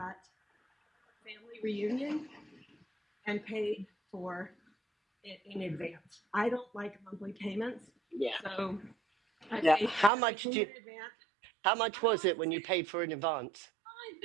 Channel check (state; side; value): drops out; left; at 10.1 s